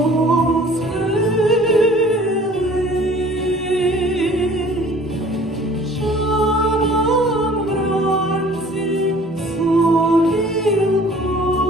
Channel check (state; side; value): normal; both; correlation 0.51